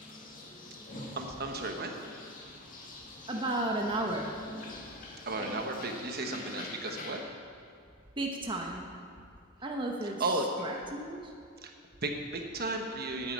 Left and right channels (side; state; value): both; normal; correlation 0.13